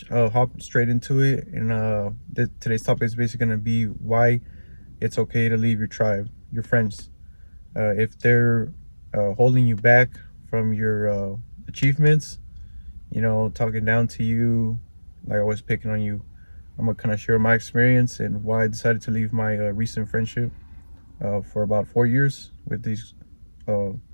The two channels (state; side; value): inverted; both; correlation -1.00